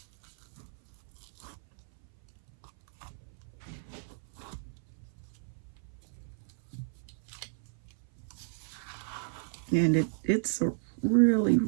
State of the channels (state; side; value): silent; left; 56 dB below the other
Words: And it's a really